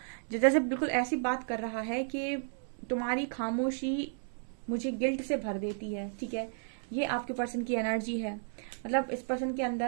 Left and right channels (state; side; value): silent; left; 56 dB below the other